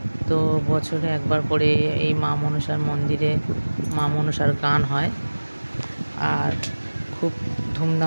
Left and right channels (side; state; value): both; inverted; correlation -1.00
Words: তো বছরে একবার করে এই মা মনসার মন্দিরে মা মনসার গান হয় আর খুব